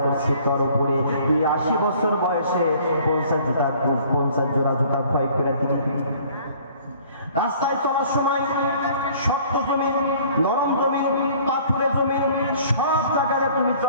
করছি তোর উপরে। তুই 80 বছর বয়সে 50 জোড়া জুতা ক্ষয় করে দিলি। রাস্তায় চলার সময় শক্ত জমিন, নরম জমিন, পাথুরে জমিন, সব জায়গায় তুমি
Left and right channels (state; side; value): inverted; both; correlation -0.54